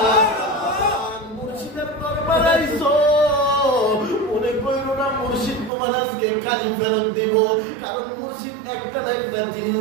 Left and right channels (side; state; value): left; drops out; at 5.7 s